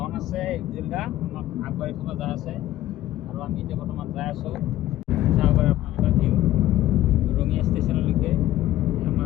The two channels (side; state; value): right; quieter; 14.2 dB